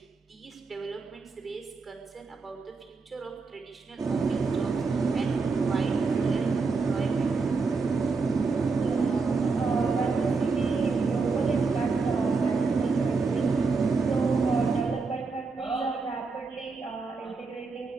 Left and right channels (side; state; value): left; quieter; 4.4 dB